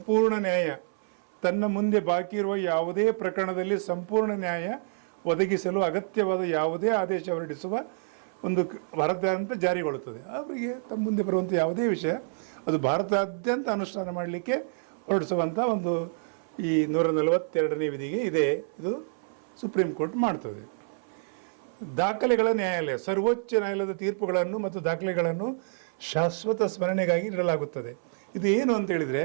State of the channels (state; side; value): silent; left; 59 dB below the other